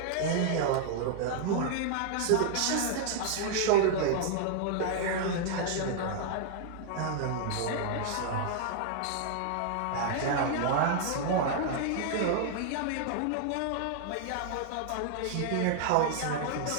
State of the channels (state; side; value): different; both; correlation -0.01